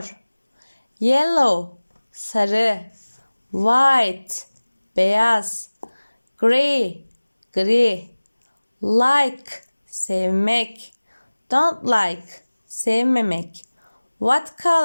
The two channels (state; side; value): inverted; both; correlation -1.00